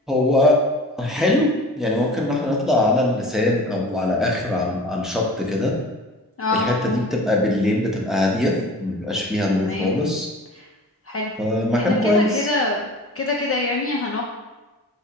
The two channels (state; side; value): normal; both; correlation 0.41